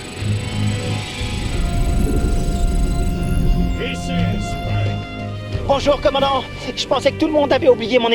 Bonjour, commandant. Je pensais que tout le monde avait oublié mon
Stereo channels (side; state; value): both; identical; correlation 1.00